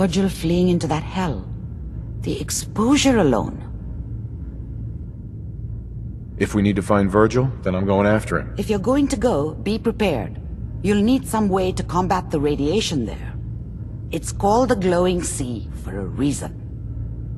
fleeing into that hell. The exposure alone. If we need to find Virgil, then I'm going after him. If you're going to go, be prepared. You'll need some way to combat the radiation there. It's called the glowing sea for a reason.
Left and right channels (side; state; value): both; identical; correlation 1.00